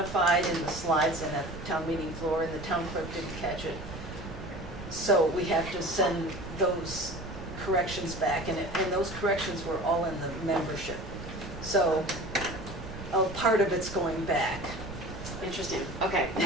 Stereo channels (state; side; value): noise; right; rumble, 11 dB below the sound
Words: in the slides and at the town meeting floor, and the town clerk didn't catch it. So we have to send those corrections back, and those corrections were all in the membership. So part of it's going back. Interesting. Okay,